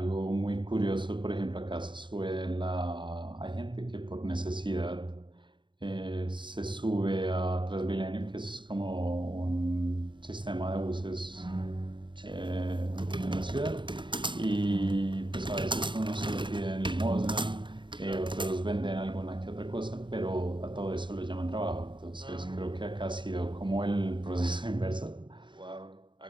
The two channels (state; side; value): late; left; 0.23 ms